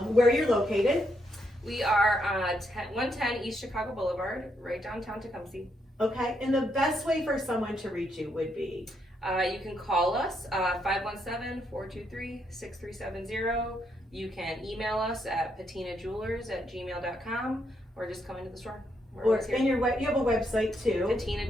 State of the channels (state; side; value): normal; both; correlation 0.77